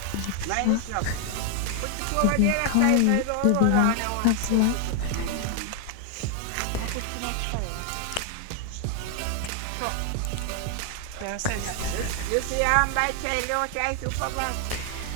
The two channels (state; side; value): different; both; correlation 0.00